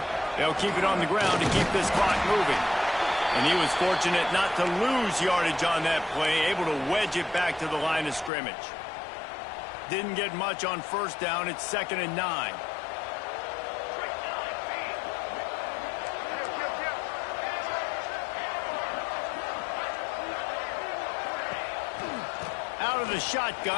They'll keep it on the ground to keep this clock moving. And he was fortunate not to lose yardage on that play, able to wedge it back to the line of scrimmage. Didn't get much on first down. It's 2nd and 9. Out of the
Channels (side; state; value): right; drops out; at 8.3 s